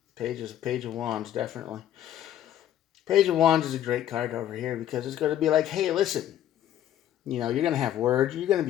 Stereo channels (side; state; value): right; quieter; 11.5 dB